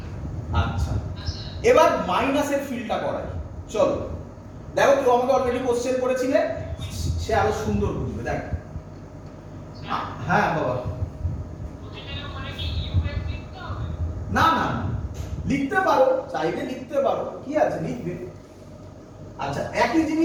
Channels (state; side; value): identical; both; correlation 1.00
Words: আচ্ছা এবার মাইনাসের ফিলটা করাই, চলো। দেখো কেউ আমাকে অলরেডি কোশ্চেন করেছিলে, সে আরো সুন্দর বুঝবে। দেখ, হ্যাঁ বাবা, না না লিখতে পারো, চাইলে লিখতে পারো, কি আছে লিখবে। আচ্ছা একই